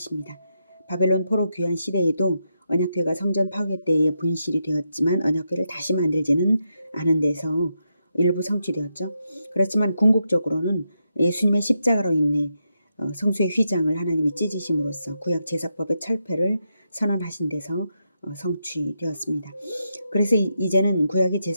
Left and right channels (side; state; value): both; inverted; correlation -0.84